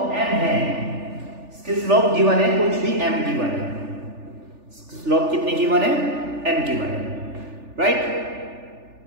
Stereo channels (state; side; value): late; left; 3.4 ms